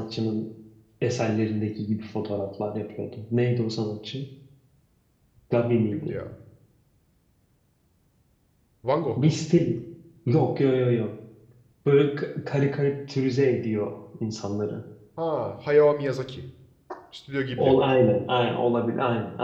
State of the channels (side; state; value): both; identical; correlation 1.00